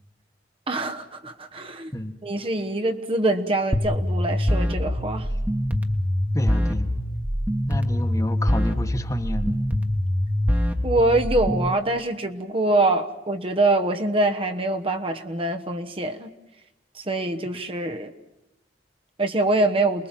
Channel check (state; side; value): normal; both; correlation 0.63